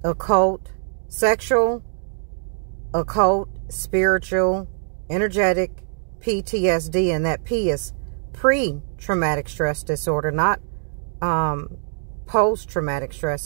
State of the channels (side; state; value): left; silent; digital silence